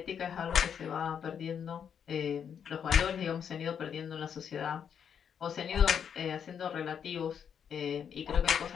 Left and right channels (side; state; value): right; quieter; 7.8 dB